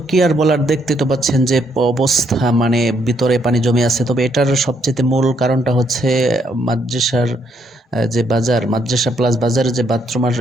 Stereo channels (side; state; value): both; normal; correlation 0.73